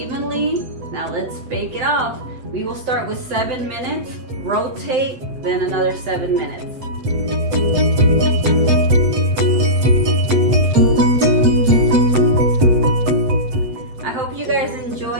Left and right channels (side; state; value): left; late; 7.8 ms